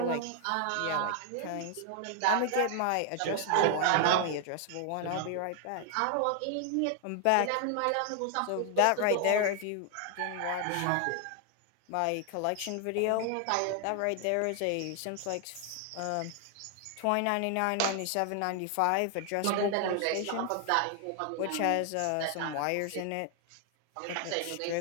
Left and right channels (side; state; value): both; different; correlation 0.00